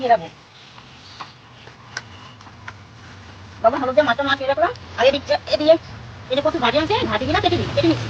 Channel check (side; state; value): both; identical; correlation 1.00